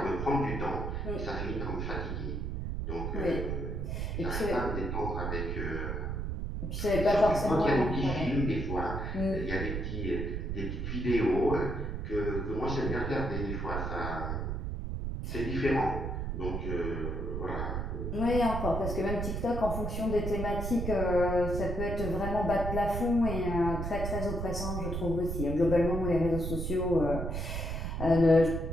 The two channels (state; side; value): noise; right; rumble, 3 dB below the sound